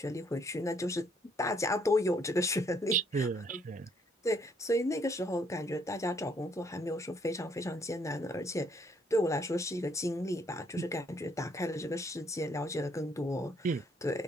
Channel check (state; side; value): normal; both; correlation 0.67